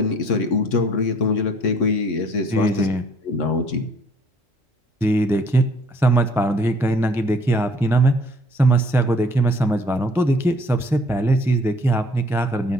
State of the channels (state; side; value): normal; both; correlation 0.58